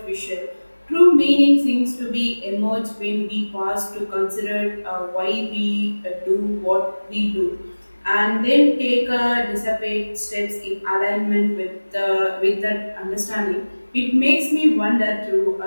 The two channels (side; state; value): both; inverted; correlation -1.00